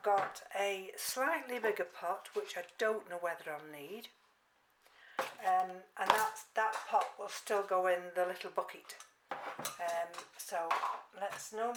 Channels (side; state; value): both; identical; correlation 1.00